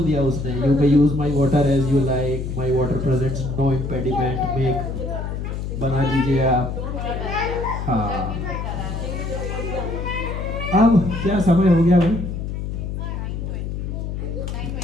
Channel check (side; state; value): left; noise; hum, 4 dB below the sound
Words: दिया उसने। You may use my water as you like, my water presents no impediment, make बना लीजिए आप। हाँ अब क्या समय हो गया भाई?